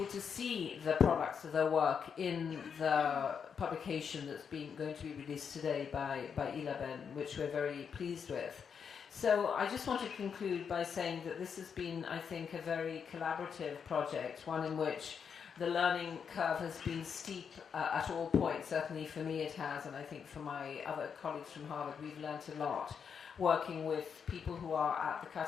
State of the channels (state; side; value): quieter; right; 6.8 dB